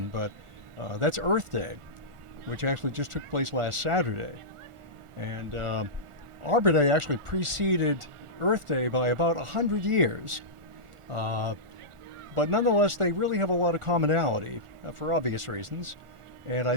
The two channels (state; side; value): late; left; 1.4 ms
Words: but that's Earth Day, which actually just took place last Saturday. And Arbor Day actually preceded Earth Day by about 100 years. But nonetheless, they really have a lot of commonality for obvious reasons. And